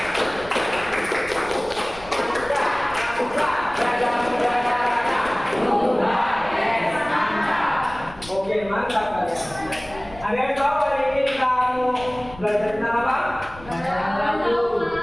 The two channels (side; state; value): left; noise; rumble, 18 dB below the sound